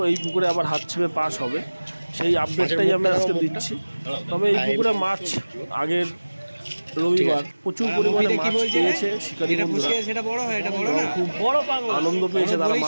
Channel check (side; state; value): both; inverted; correlation -1.00